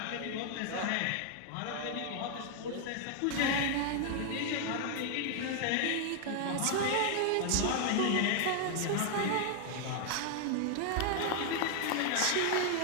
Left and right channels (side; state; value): both; different; correlation 0.00